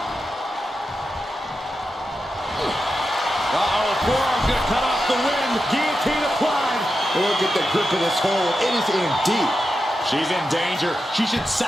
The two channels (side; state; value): both; normal; correlation 0.89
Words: Uh-oh, forearm's going to cut off the wind. Guillotine applied. Look at the grip of this hold. It is in deep. She's in danger. She should